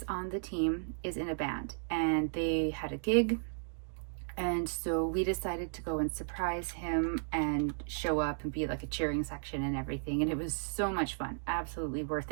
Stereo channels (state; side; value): silent; left; digital silence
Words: on the team is in a band, and they had a gig, and so we decided to go and surprise him and show up and be like a cheering section and everything, and it was so much fun, absolutely worth